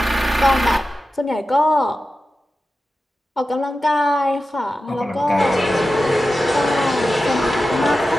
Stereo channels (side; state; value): both; normal; correlation 0.93